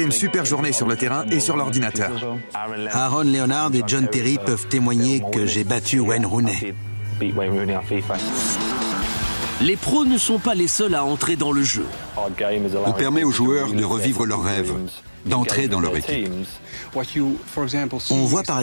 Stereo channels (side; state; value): both; inverted; correlation -1.00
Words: une super journée sur le terrain et sur l'ordinateur. Aaron Leonard et John Terry peuvent témoigner que j'ai battu Wayne Rooney. Les pros ne sont pas les seuls à entrer dans le jeu. On permet aux joueurs de revivre leurs rêves, d'entrer dans leur équipe. On voit par